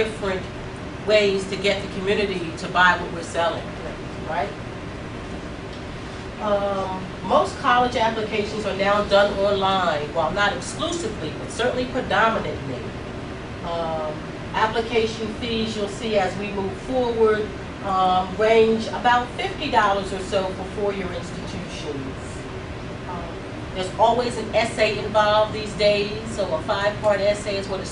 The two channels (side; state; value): both; identical; correlation 1.00